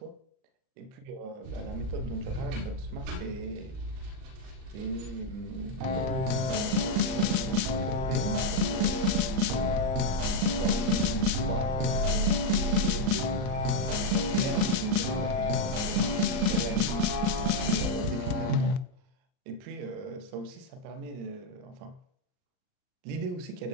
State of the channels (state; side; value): late; left; 38 ms